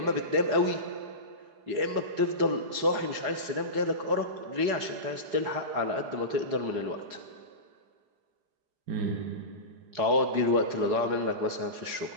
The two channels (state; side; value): late; left; 4.8 ms